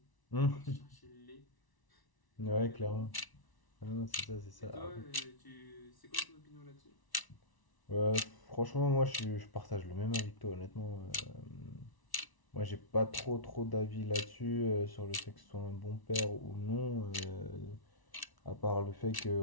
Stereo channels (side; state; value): right; late; 1.0 ms